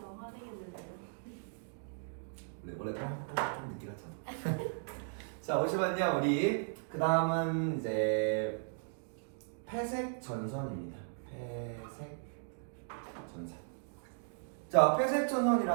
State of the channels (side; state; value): left; silent; digital silence